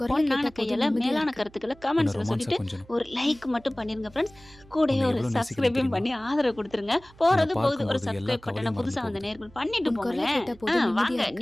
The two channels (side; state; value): right; noise; hum, 25 dB below the sound